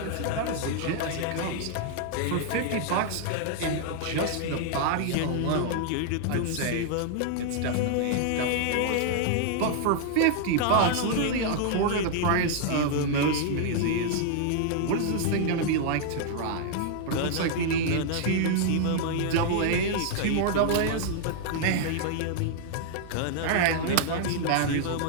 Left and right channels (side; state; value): both; different; correlation -0.01